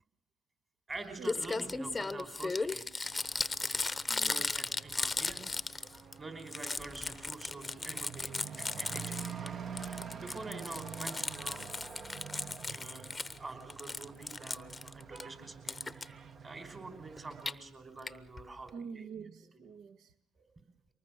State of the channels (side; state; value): both; normal; correlation 0.91